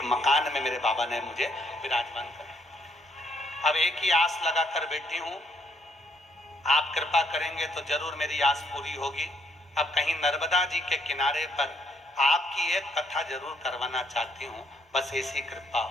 मकान में मेरे बाबा ने मुझे विराजमान कर। अब एक ही आस लगा कर बैठी हूं, आप कृपा करेंगे तो जरूर मेरी आस पूरी होगी। अब कहीं नर्मदा जी के किनारे पर आपकी एक कथा जरूर करवाना चाहती हूँ, बस ऐसी कृपा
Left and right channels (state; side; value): normal; both; correlation 0.71